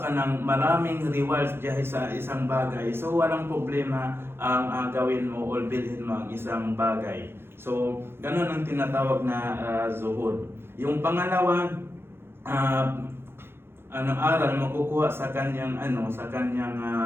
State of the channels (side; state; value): left; late; 0.11 ms